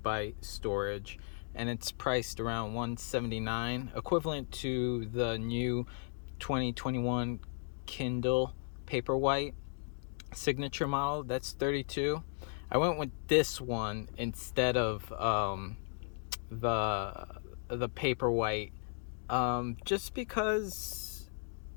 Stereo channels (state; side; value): silent; right; digital silence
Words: storage and it's priced around $179, equivalent to the new 2021 Kindle Paperwhite signature model. That's 32. I went with this one instead of the Paperwhite, just because